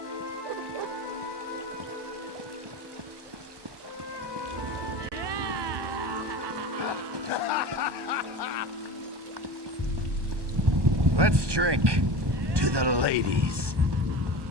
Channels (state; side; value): late; left; 1.2 ms